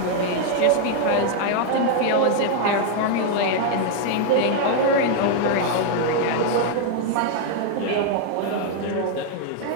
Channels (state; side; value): different; both; correlation 0.00